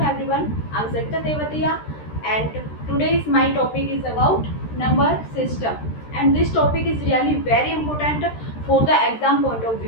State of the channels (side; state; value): right; late; 13 ms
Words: everyone. I'm Sakta Tevatia and today's my topic is about number system and this topic is really very important for the exam point of